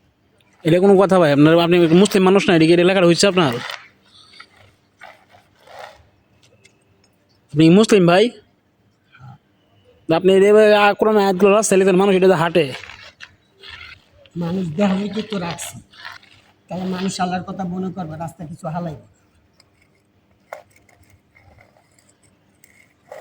এটা কোনো কথা ভাই? আপনার আপনি মুসলিম মানুষ না, এদিকে লেখাটা হচ্ছে আপনার? আপনি মুসলিম ভাই, আপনি কোরআন আয়াতগুলো রাস্তায় লিখেন, মানুষ এটা হাঁটে। মানুষ দেখাইতে তো রাখছি, তাহলে মানুষ আল্লাহর কথা মনে করবে, রাস্তা কিছু হালাইবে।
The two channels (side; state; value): both; identical; correlation 1.00